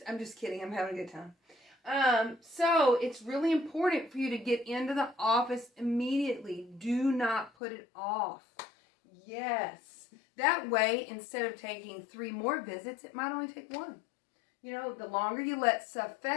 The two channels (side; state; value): right; drops out; at 7.5 s